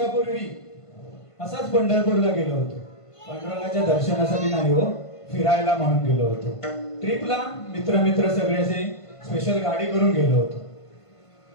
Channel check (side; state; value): right; late; 1.5 ms